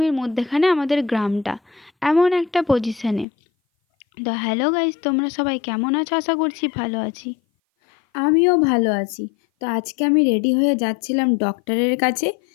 মধ্যেখানে আমাদের গ্রামটা, এমন একটা পজিশনে। তো হ্যালো গাইস, তোমরা সবাই কেমন আছো? আশা করছি ভালো আছি। আমিও ভালো আছি। তো আজকে আমি রেডি হয়ে যাচ্ছিলাম ডক্টরের কাছে,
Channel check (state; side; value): drops out; right; at 3.2 s